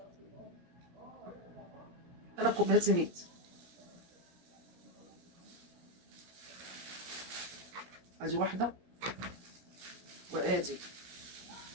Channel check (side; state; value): left; late; 17 ms